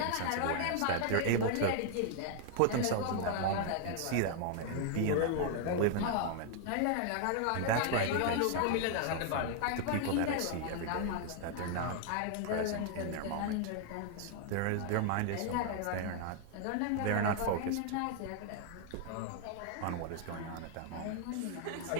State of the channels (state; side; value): different; both; correlation -0.01